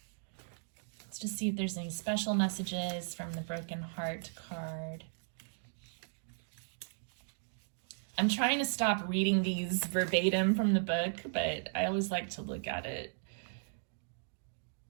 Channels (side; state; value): left; silent; digital silence